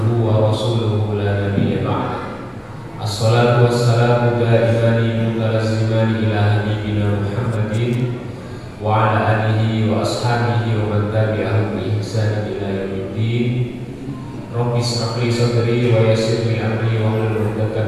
wa rasuluhu la nabiyya ba'da. Assalatu wassalamu daimani mutalazzimani ila habibina Muhammadin wa ala alihi wa ashabihi wa man tabi'ahum bi ihsan ila yaumiddin. Rabbi ishrah li sadri wa yassir li amri wa hlul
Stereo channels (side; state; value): both; identical; correlation 1.00